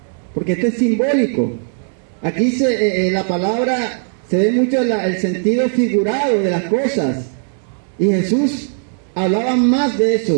porque esto es simbólico. Aquí la palabra se ve mucho el sentido figurado de las cosas, y Jesús hablaba más de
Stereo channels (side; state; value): left; silent; 68 dB below the other